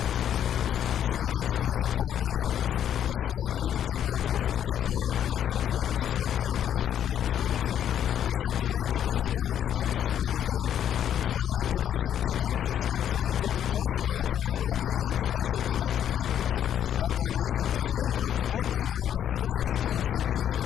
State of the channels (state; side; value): quieter; right; 9.9 dB